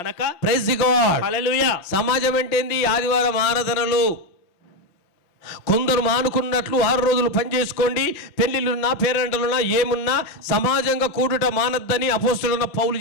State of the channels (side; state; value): right; late; 5.7 ms